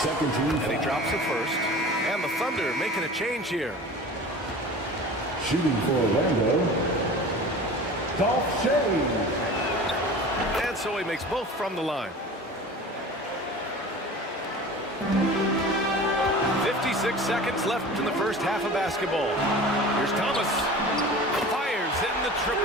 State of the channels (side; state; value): both; normal; correlation 0.38